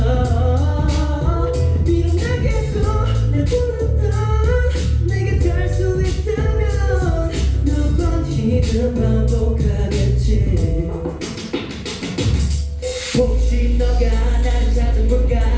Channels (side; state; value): both; identical; correlation 1.00